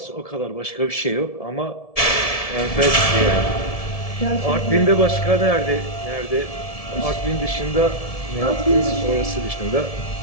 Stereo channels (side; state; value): right; late; 1.7 ms